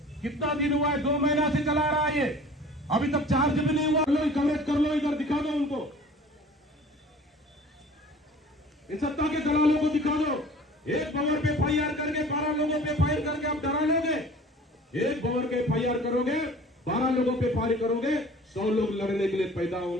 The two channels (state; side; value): normal; both; correlation 0.46